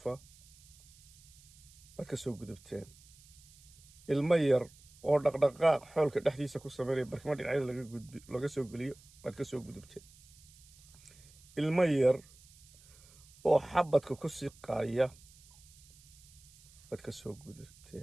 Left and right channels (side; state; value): right; noise; hiss, 24 dB below the sound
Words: baad ka soo gudubteen ilmo yar oo dhaqdhaqaaq xoolka dhexdiisa ku sameynaya barkimo dhinacyada laga soo geliyo baad ka soo gudubteen ilmo yar oo xabadka ku siqaaya waad ka soo